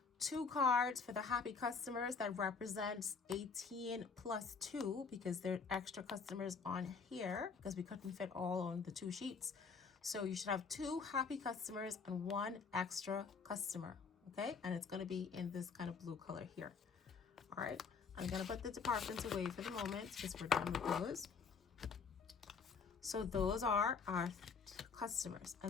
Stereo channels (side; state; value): right; quieter; 5.3 dB